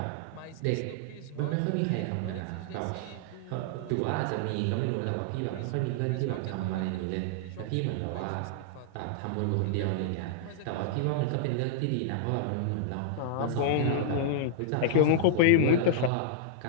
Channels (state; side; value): different; both; correlation -0.01